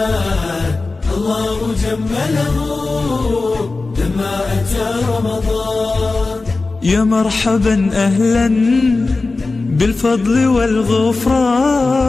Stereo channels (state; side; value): quieter; right; 3.6 dB